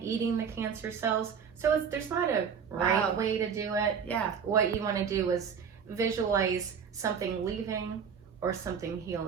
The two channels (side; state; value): left; quieter; 6.8 dB